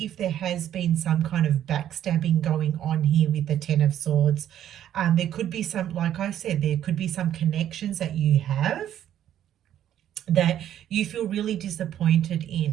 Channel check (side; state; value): left; quieter; 11.0 dB